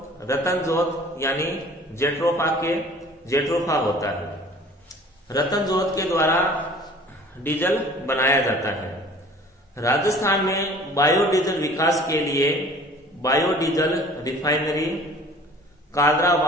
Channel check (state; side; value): normal; both; correlation 0.48